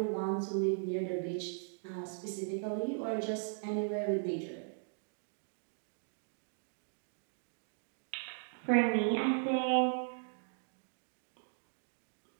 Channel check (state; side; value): silent; left; digital silence